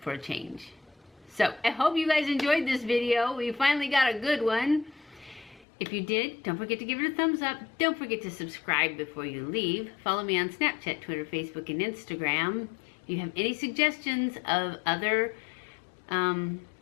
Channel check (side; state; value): right; drops out; at 5.7 s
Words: a change. So I hope you guys enjoyed this video. We finally got a good one. If you did, don't forget to give it a thumbs up. Don't forget to subscribe before you leave. Follow me on Snapchat, Twitter, Facebook, and Instagram. If you have any suggestions of other